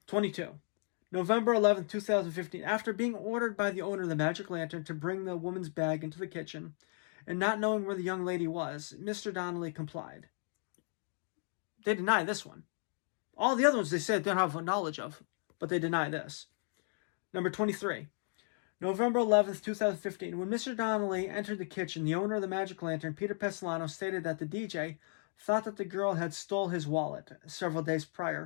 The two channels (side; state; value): right; silent; 54 dB below the other